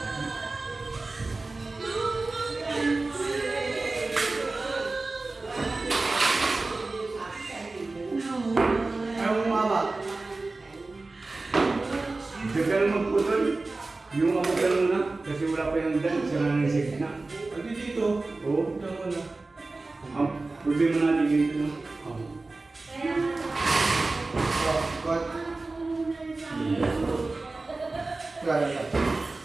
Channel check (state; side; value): quieter; left; 3.4 dB